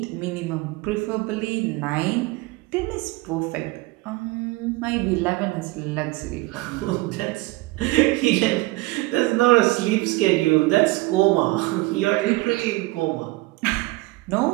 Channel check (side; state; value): left; quieter; 21.6 dB